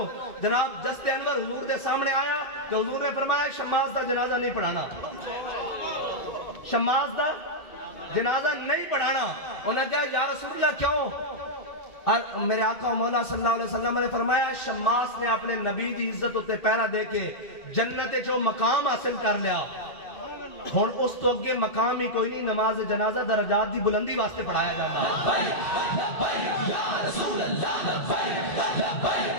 جناب جست انور حضور دے سامنے آیا کہ حضور نے فرمایا شماس دا جنازہ نہیں پڑھانا شماس دا جنازہ نہیں پڑھانا انہوں نے کہا یا رسول اللہ کیوں میرے آقا و مولا صلی اللہ علیہ وسلم نے فرمایا شماس نے اپنے نبی دی عزت ہوتے پیرا دے کے جنت جو مقام حاصل کر لیا ہون اس تو اگے مقام ہی کوئی نہیں نماز جنازہ درجات دی بلندی واسطے پڑھایا جاتا یا رسول اللہ لبیک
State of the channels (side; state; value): right; late; 2.6 ms